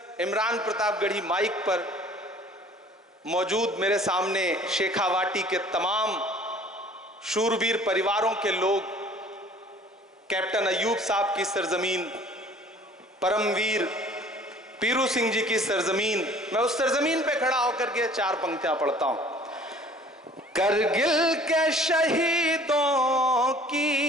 इमरान प्रतापगढ़ी माइक पर मौजूद मेरे सामने शेखावाटी के तमाम शूरवीर परिवारों के लोग, कैप्टन अय्यूब साहब की सरजमीन, परमवीर पीरू सिंह जी की सरजमीन, मैं उस सरजमीन पे खड़ा होकर के चार पंक्तियां पढ़ता हूं। करगिल के शहीदों की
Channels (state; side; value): normal; both; correlation 0.50